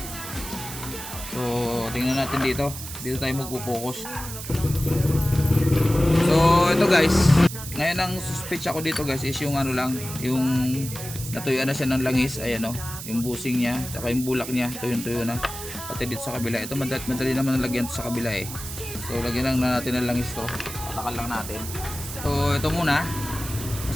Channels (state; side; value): noise; right; hiss, 10 dB below the sound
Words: So, tingnan natin dito. Dito tayo magpo-focus. So, ito guys. Ngayon ang suspect ako dito guys is yung yung natuyuan na siya ng langis. Ayan yung busing niya, saka yung bulak niya, tuyo na. Pati dito sa kabila. Ito madali naman nalagyan sa kabila eh. So, lagyan lang natin ng langis to. Patakal lang natin. So, ito muna.